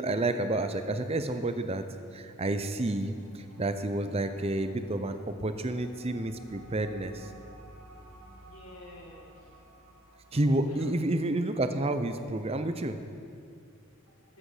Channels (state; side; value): normal; both; correlation 0.61